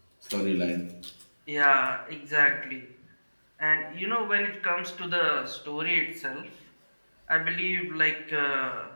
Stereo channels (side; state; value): both; inverted; correlation -1.00